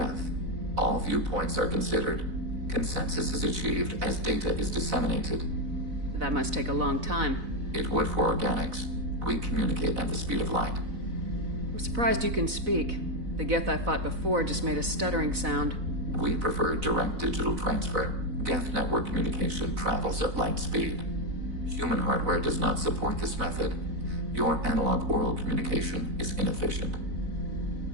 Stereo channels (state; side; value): late; left; 4.0 ms